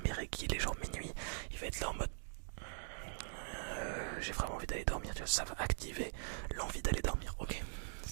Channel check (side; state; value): left; silent; digital silence